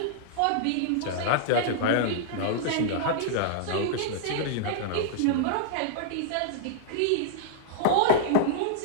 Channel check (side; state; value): both; different; correlation -0.01